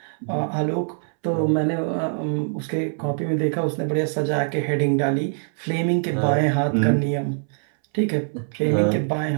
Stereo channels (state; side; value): silent; left; 63 dB below the other